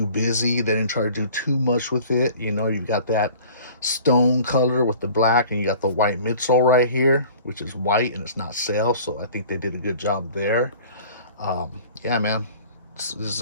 busy. They didn't try to do too much with it. You know, you've got that stone color with the black, and you got the white midsole right here, which is white and it's not sail, so I think they did a good job there. Yeah, man, this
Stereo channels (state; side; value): inverted; both; correlation -0.47